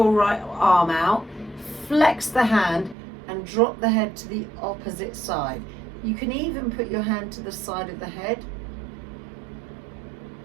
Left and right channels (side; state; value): left; drops out; at 3.0 s